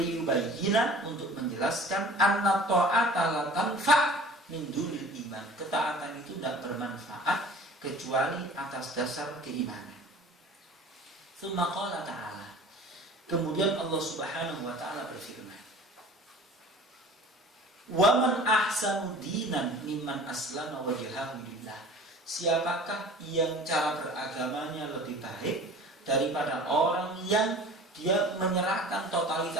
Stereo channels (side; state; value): both; normal; correlation 0.44